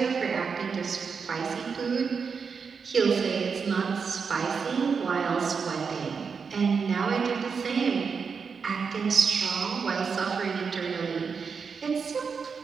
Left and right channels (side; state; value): left; quieter; 5.7 dB